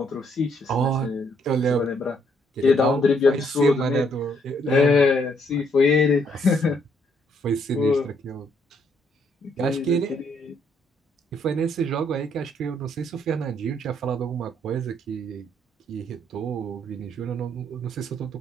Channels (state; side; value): normal; both; correlation 0.70